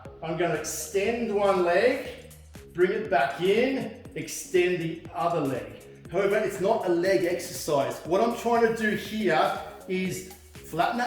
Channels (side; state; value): both; identical; correlation 1.00